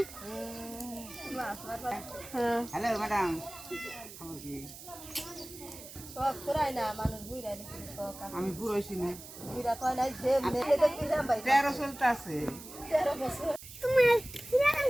হ্যালো ম্যাডাম, খবর কি? সব করায় না মানুষ বুইরাই নাকি সব আমি পুরো হইছি না, বুইরা তো নাই যে নেতে দেখবি না ভাই 13 চলতে আছে। 13 বছর তোমার সিরাম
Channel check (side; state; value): right; noise; hiss, 15 dB below the sound